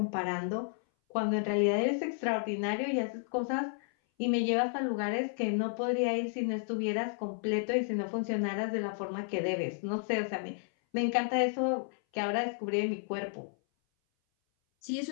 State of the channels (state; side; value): silent; right; 56 dB below the other